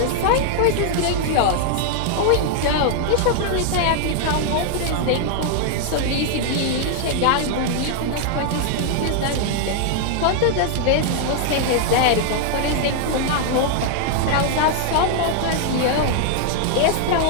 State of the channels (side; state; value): both; different; correlation 0.00